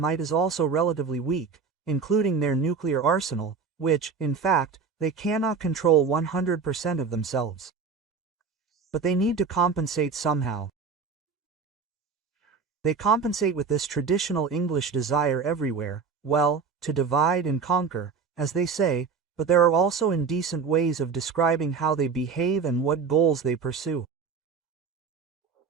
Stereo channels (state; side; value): quieter; left; 5.4 dB